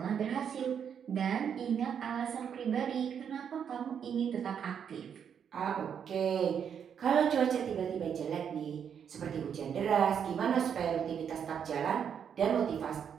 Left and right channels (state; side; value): quieter; left; 7.9 dB